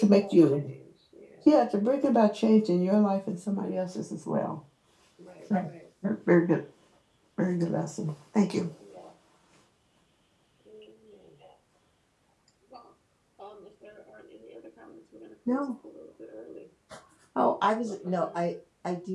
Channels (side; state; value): both; identical; correlation 1.00